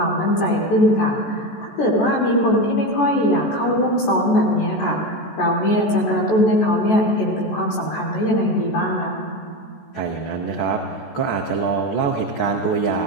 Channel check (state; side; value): late; right; 14 ms